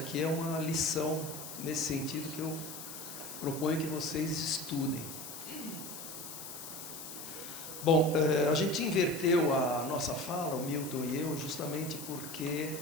é uma lição nesse sentido que eu proponho que vocês estudem. Bom, a gente inverteu a nossa fala, o Milton e eu, justamente porque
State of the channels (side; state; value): left; noise; hiss, 10 dB below the sound